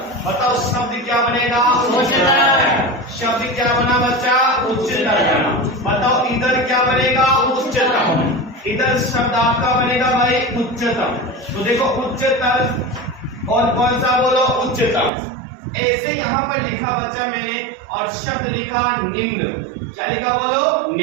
बताओ शब्द क्या बनेगा, उच्चतर। शब्द क्या बना बच्चा, उच्चतर बना। बताओ इधर क्या बनेगा, उच्चतम। इधर शब्द आपका बनेगा भाई उच्चतम। तो देखो उच्चतर और कौन सा बोलो, उच्चतम। ऐसे यहाँ पर लिखा बच्चा मैंने और शब्द लिखा निम्न। क्या लिखा बोलो,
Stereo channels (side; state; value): left; drops out; at 15.1 s